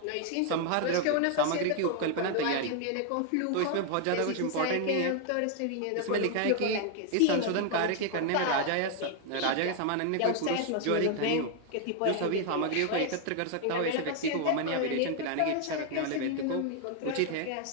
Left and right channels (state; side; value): different; both; correlation 0.00